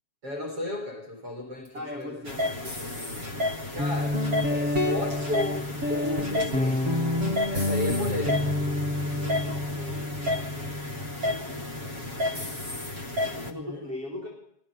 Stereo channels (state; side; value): late; left; 7.3 ms